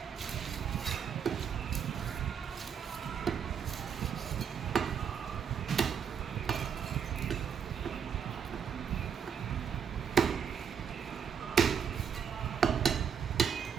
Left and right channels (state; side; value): quieter; left; 7.5 dB